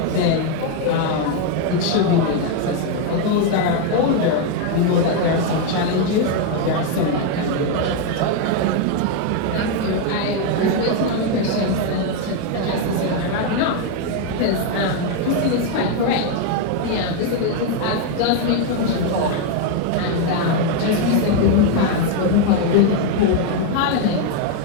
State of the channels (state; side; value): different; both; correlation 0.01